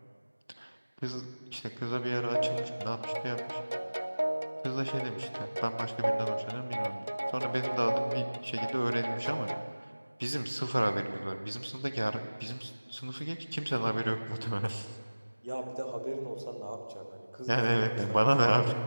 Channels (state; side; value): inverted; both; correlation -1.00